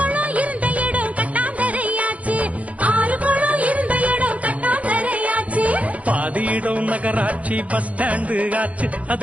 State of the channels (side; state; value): left; late; 0.067 ms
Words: இருந்த இடம் கட்டாந்தரையாச்சு. ஆறு குளம் இருந்த இடம் கட்டாந்தரையாச்சு. பாதி இடம் நகராட்சி பஸ் ஸ்டாண்டு ஆச்சு,